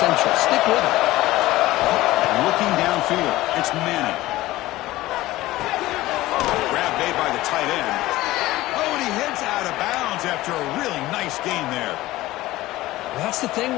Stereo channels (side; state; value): right; quieter; 17.3 dB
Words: Stick with it. Looking downfield, it's Manning. Grab made by the tight end. Oh, and he heads out of bounds after a really nice gain there. That's the